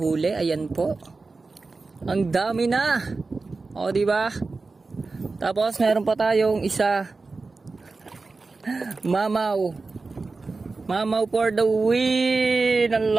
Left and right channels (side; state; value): left; quieter; 3.9 dB